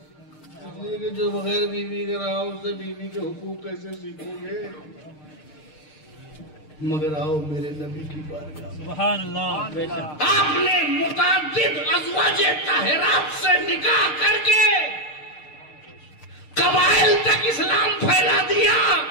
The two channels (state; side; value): late; right; 6.6 ms